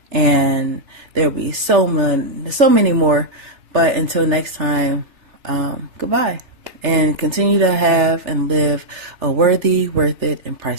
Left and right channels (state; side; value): late; left; 3.4 ms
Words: And there'll be so many more. But until next time, goodbye. And continue to have and live a worthy, worth it, and